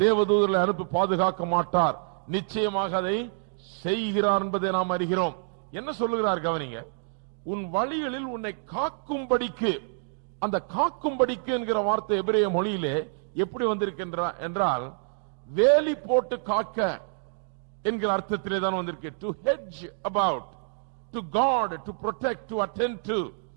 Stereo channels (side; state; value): left; silent; digital silence